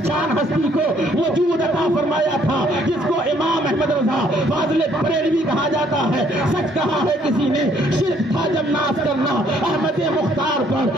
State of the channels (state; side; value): normal; both; correlation 0.65